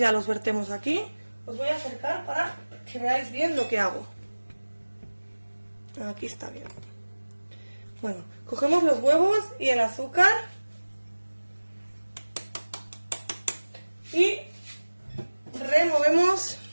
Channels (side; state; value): both; inverted; correlation -1.00